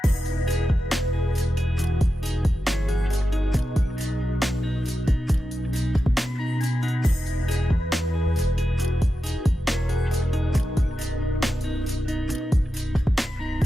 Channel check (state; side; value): normal; both; correlation 0.90